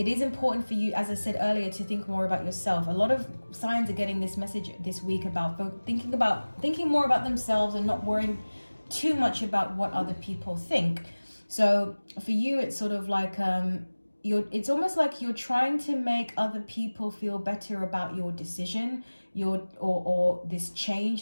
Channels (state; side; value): inverted; both; correlation -1.00